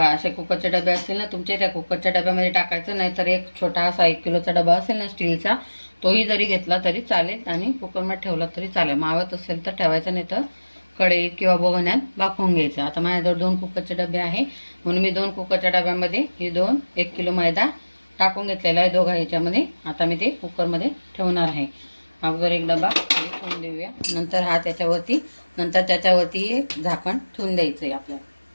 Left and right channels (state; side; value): inverted; both; correlation -1.00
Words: असे कुकरचे डबे असतील ना तुमच्या, त्या कुकरच्या डब्यामध्ये टाकायचं, नाहीतर एक छोटा असा 1 किलोचा डबा असेल ना स्टीलचा, तोही जरी घेतला तरी चालेल आणि कुकरमध्ये ठेवला तरी चालेल। मावत असेल तर ठेवायचं, नाही तर कढईत किंवा बघण्यात वाफवून घ्यायचं। आता माझ्याजवळ 2 कुकरचे डबे आहे म्हणून मी 2 कुकरच्या डब्यामध्ये हे 1 किलो मैदा टाकून घेतलेला आहे दोघा ह्याच्यामध्ये। आता मी ते कुकरमध्ये ठेवणार आहे। अगोदर एक डबा ठेवून देऊया, नंतर त्याच्यावरती एक झाकण ठेवून द्यायचं आहे आपल्याला।